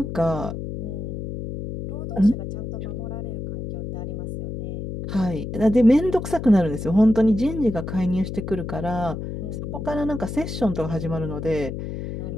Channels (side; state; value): left; noise; hum, 6 dB below the sound